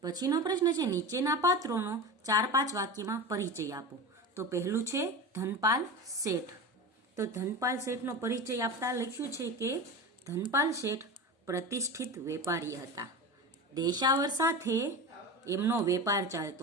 પછીનો પ્રશ્ન છે, નીચેના પાત્રોનો 4-5 વાક્યમાં પરિચય આપો. તો પહેલું છે ધનપાલ શેઠ. તો ધનપાલ શેઠનો પરિચય આપતા લખ્યું છે કે ધનપાલ શેઠ પ્રતિષ્ઠિત વેપારી હતા. દેશાવર સાથે એમનો વેપાર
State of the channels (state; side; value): normal; both; correlation 0.27